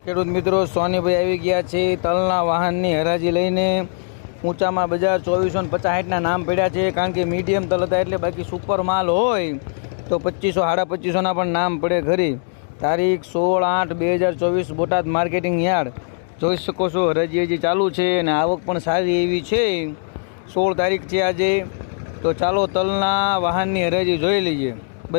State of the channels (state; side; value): silent; right; digital silence